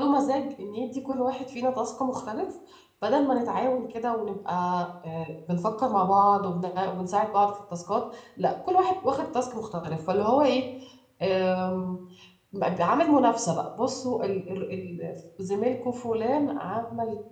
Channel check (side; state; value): both; identical; correlation 1.00